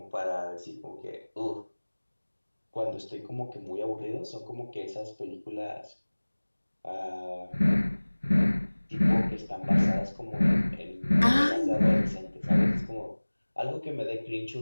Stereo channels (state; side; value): inverted; both; correlation -1.00